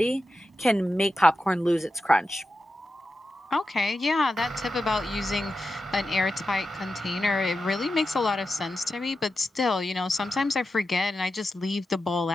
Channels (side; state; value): both; normal; correlation 0.91